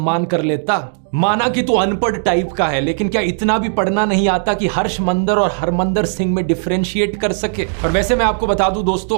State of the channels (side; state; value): left; silent; digital silence